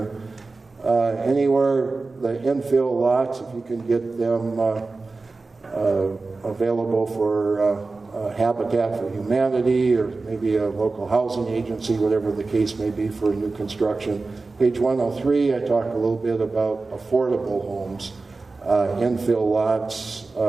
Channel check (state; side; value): quieter; left; 3.7 dB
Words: Anywhere the infill lots, if you can get them available for Habitat for Humanity or maybe a local housing agency, whatever the case may be for new construction. Page 103, I talk a little bit about affordable homes, infill lots,